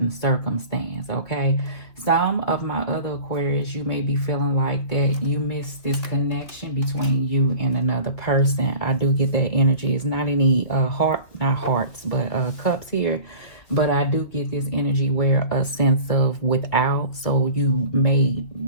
circumstance. Okay, some of my other Aquarius, you may be feeling like that you miss this connection between you and another person. I do get that energy. It's not any not hearts, but cups here, but I do get this energy where a sense of without. So you may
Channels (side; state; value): right; late; 2.8 ms